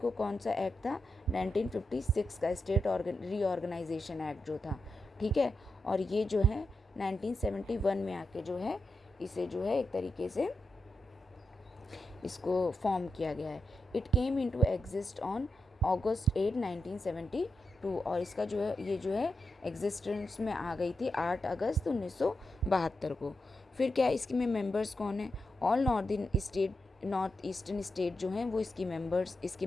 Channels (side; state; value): both; normal; correlation 0.87